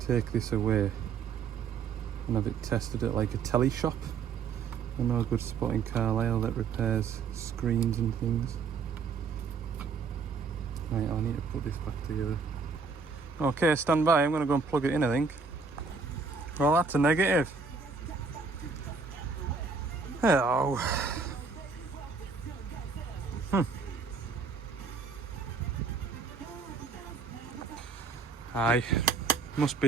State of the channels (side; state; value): left; quieter; 5.1 dB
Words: this away and have it tested at like a telly shop. I know a good spot in Carlisle that repairs screens and things. Right, I'll need to put this back together. Okay, stand by, I'm going to go and plug it in, I think. Well, that's a negative. Hello. Aye, must